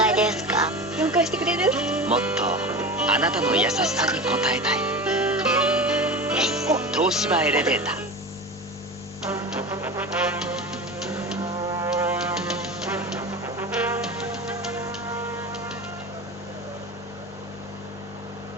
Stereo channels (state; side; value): noise; right; rumble, 28 dB below the sound